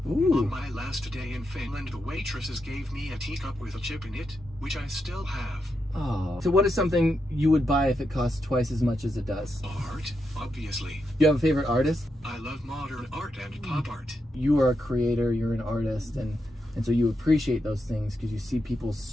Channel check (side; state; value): both; normal; correlation 0.84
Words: Ooh. On my last day in Finland, the waitresses gave me a teacup with a chip in it, which I still have. Oh. So what is something you would buy if it costs twice as much as it does? Art, obviously. Do you have a favorite artist? I love modern art and pop art. You are a creator, you're an artist, and so you appreciate those things because you see people's